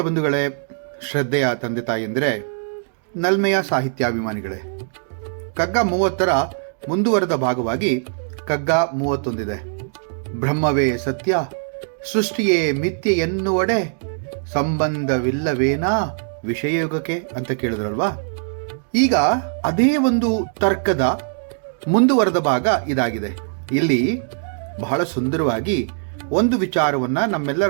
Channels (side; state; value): left; silent; digital silence